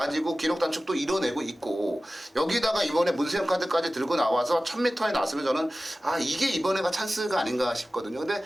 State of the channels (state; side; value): normal; both; correlation 0.96